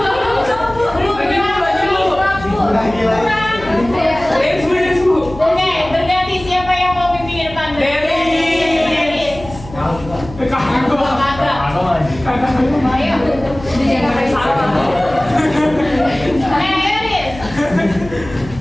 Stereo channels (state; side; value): noise; left; hum, 15 dB below the sound